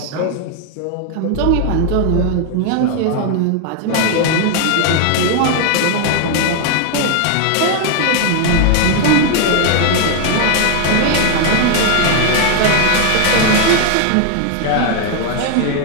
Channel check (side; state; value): both; different; correlation 0.00